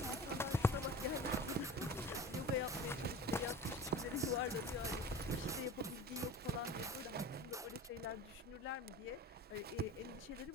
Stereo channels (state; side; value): normal; both; correlation 0.36